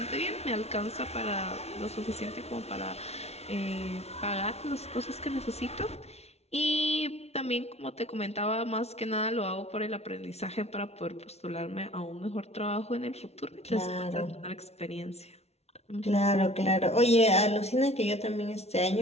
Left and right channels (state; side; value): late; right; 0.31 ms